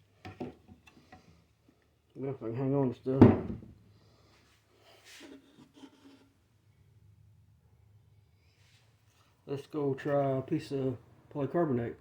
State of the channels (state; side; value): identical; both; correlation 1.00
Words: If I can hang on to stuff. Let's go try a piece of polycarbonate.